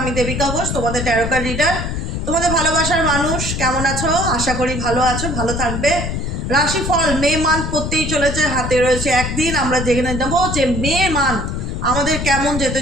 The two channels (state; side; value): noise; left; rumble, 3 dB below the sound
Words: দেবিকা ঘোষ, তোমাদের ট্যারোকার রিডার। তোমাদের ভালোবাসার মানুষ কেমন আছো? আশা করি ভালো আছো, ভালো থাকবে। রাশিফল মে মান্থ পড়তেই চলেছে, হাতে রয়েছে একদিন। আমরা জেনে নেবো যে মে মান্থ আমাদের কেমন যেতে